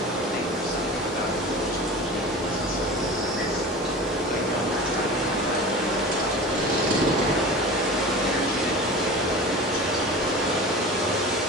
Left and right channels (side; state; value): both; normal; correlation 0.34